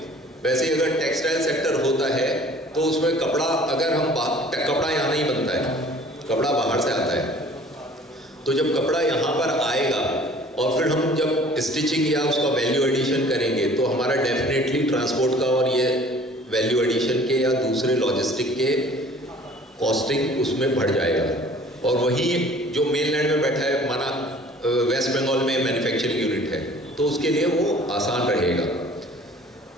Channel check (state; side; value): normal; both; correlation 0.50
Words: वैसे ही अगर टेक्सटाइल सेक्टर होता है तो उसमें कपड़ा, अगर हम कपड़ा यहाँ नहीं बनता है, कपड़ा बाहर से आता है। तो जब कपड़ा यहाँ पर आएगा और फिर हम जब स्टिचिंग या उसका वैल्यू एडिशन करेंगे तो हमारा डेफिनेटली ट्रांसपोर्ट का और ये वैल्यू एडिशन के या दूसरे लॉजिस्टिक के कॉस्टिंग उसमें बढ़ जाएगा। और वही जो मेनलैंड में बैठा है, माना वेस्ट बंगाल में मैन्युफैक्चरिंग यूनिट है, तो उसके लिए वो आसान रहेगा।